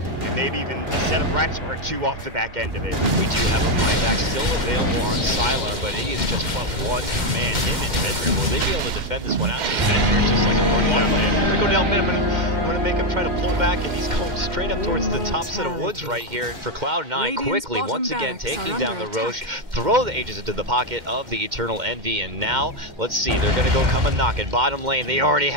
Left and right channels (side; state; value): left; late; 2.1 ms